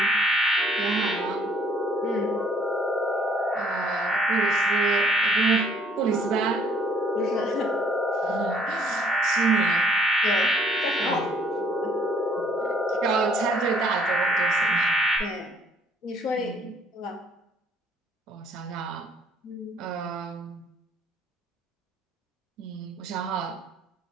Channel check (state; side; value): normal; both; correlation 0.60